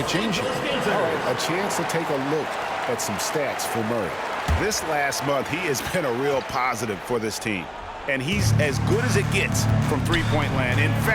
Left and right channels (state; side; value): identical; both; correlation 1.00